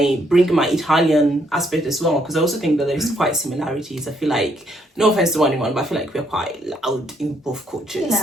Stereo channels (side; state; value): both; normal; correlation 0.71